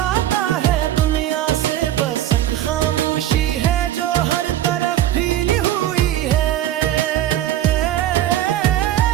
है दुनिया से, बस एक खामोशी है जो हर तरफ फैली हुई है।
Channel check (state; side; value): quieter; left; 12.5 dB